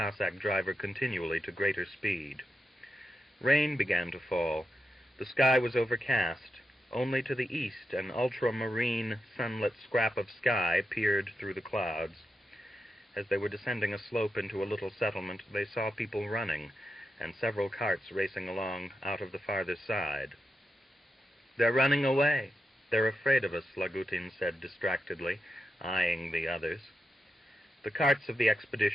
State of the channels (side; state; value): both; normal; correlation 0.88